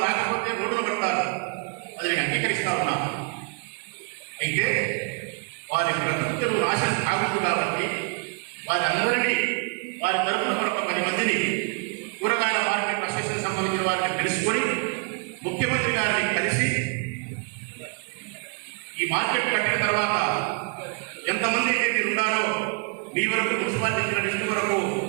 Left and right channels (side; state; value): left; quieter; 37.3 dB